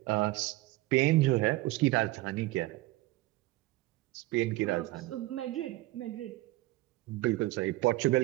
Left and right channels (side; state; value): left; quieter; 18.9 dB